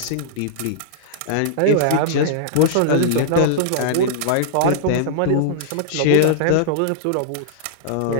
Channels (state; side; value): different; both; correlation -0.02